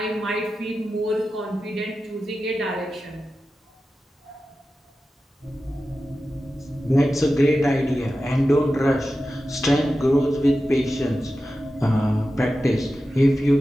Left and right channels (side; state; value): both; normal; correlation 0.93